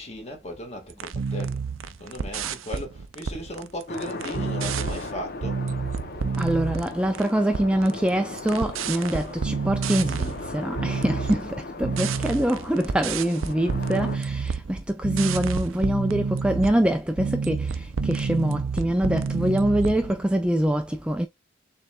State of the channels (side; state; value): both; normal; correlation 0.85